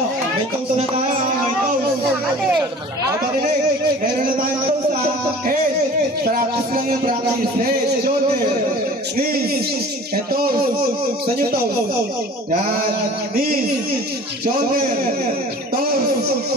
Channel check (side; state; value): both; normal; correlation 0.44